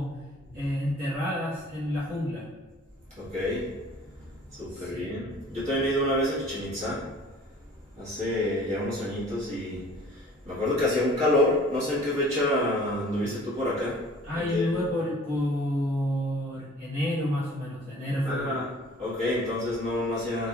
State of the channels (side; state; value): both; normal; correlation 0.50